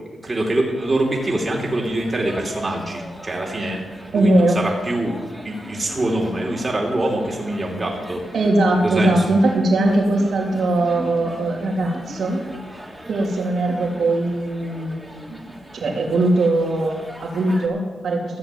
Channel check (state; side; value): normal; both; correlation 0.88